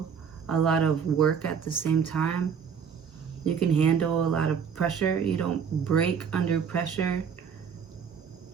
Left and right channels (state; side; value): quieter; left; 7.0 dB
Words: a lot of work at the same time. You can handle a lot of pressure. You don't break under pressure.